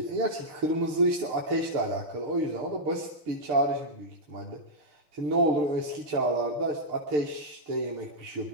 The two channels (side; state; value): left; late; 6.6 ms